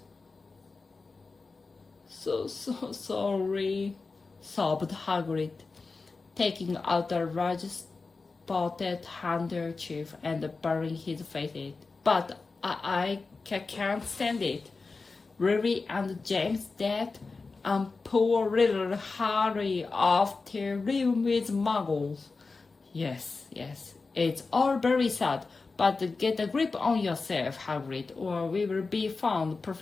So sorry, sobbed Hagrid, taking out a large spotted handkerchief and burying his face in it. But I can't stand it. Ruby and James dead, and poor little Harry off to live with muggles. Yes, it's all very sad, but get a grip on yourself, Hagrid, or we will be found,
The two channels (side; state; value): right; quieter; 4.1 dB